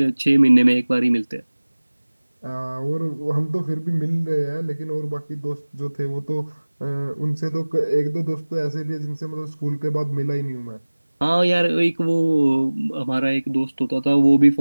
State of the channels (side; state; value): both; inverted; correlation -1.00